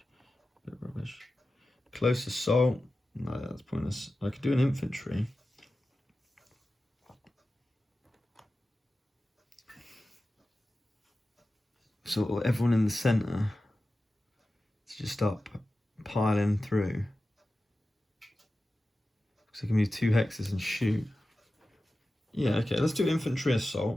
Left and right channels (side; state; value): both; normal; correlation 0.94